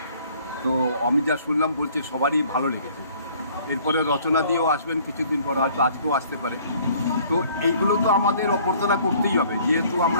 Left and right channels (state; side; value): inverted; both; correlation -0.56